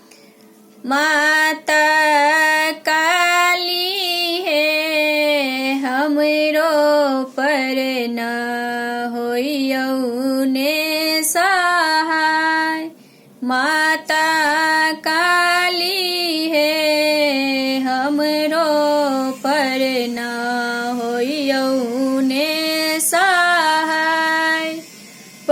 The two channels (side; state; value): both; identical; correlation 1.00